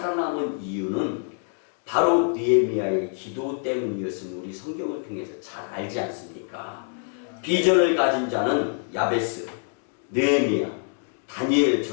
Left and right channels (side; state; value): right; silent; 56 dB below the other